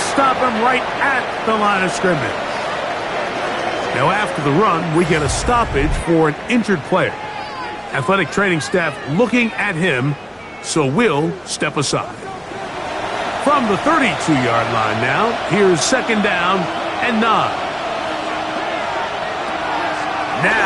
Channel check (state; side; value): identical; both; correlation 1.00